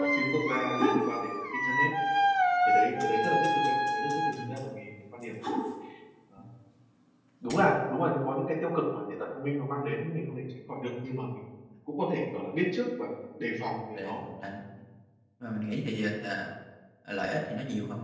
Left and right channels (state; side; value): identical; both; correlation 1.00